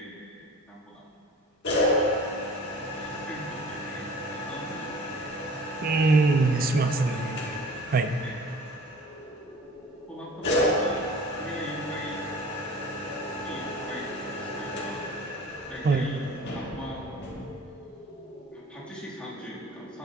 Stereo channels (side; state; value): both; normal; correlation 0.43